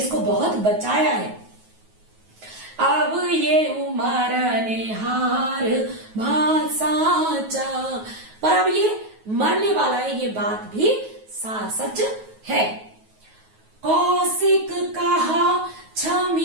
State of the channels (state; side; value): late; left; 9.3 ms